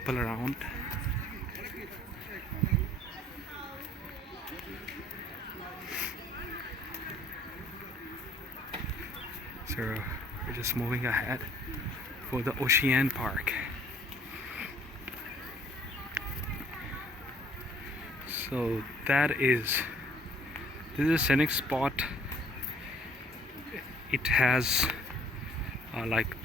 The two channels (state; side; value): normal; both; correlation 0.58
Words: around. So we're just moving ahead for the Ocean Park. So that is This is a scenic spot. It has like